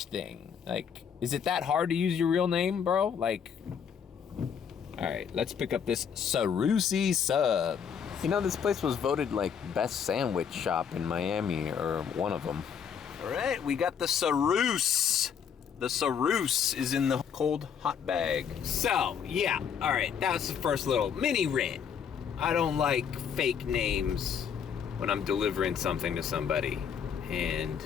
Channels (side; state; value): right; quieter; 7.5 dB